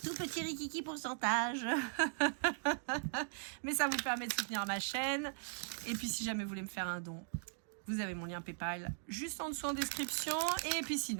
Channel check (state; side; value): silent; left; digital silence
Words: petit rikiki pourcentage. Mais ça vous permet de soutenir ma chaîne. Et puis si jamais vous voulez me faire un don, vous avez mon lien PayPal juste en dessous en description. Et puis